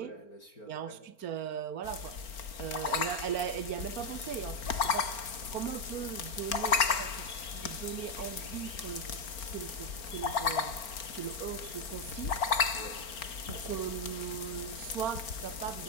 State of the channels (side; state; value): right; late; 4.4 ms